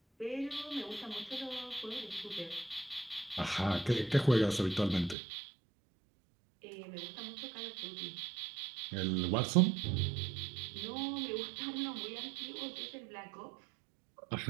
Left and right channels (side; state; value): left; drops out; at 5.2 s